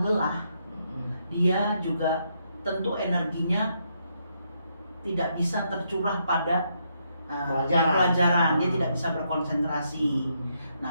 lelah, dia juga tentu energinya tidak bisa tercurah pada pelajaran, dia tidak bisa berkonsentrasi.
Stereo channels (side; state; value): both; inverted; correlation -0.77